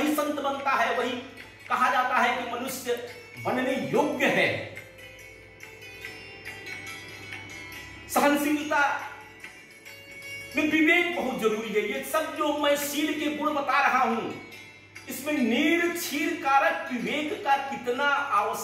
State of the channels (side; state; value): both; identical; correlation 1.00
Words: संत बनता है, वही कहा जाता है कि मनुष्य बनने योग्य है। सहनशीलता में विवेक बहुत जरूरी है। ये सब जो मैं शील के गुण बता रहा हूं, इसमें नीर क्षीर कारक विवेक का कितना